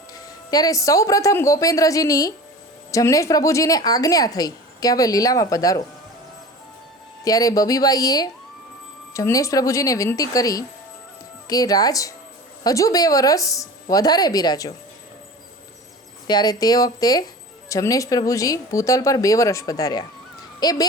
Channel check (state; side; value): normal; both; correlation 0.36